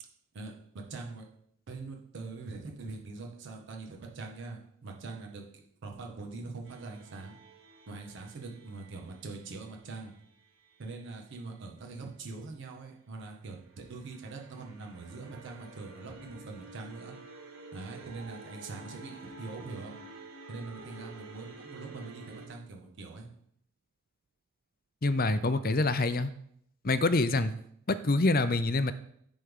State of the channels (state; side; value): normal; both; correlation 0.56